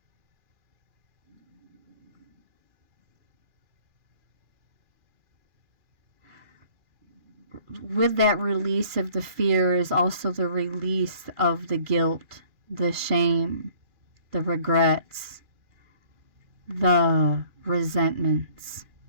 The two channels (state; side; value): late; left; 2.4 ms